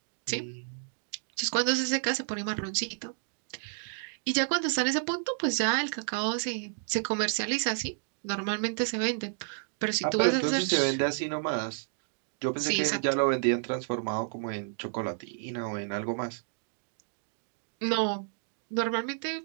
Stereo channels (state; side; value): silent; left; digital silence